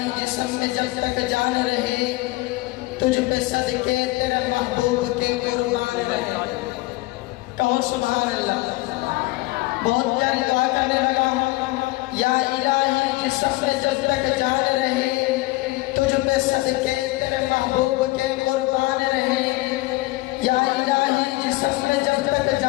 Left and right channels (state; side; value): quieter; right; 20.8 dB